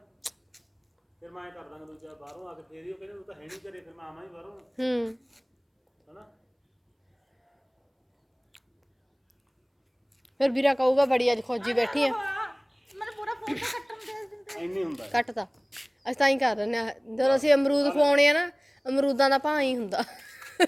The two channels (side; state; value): both; identical; correlation 1.00